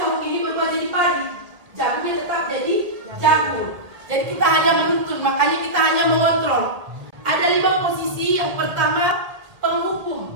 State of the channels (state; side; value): late; left; 1.8 ms